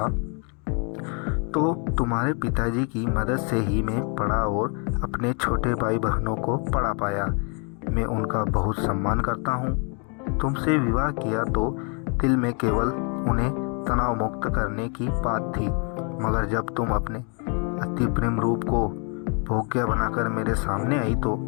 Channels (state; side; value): quieter; right; 37.7 dB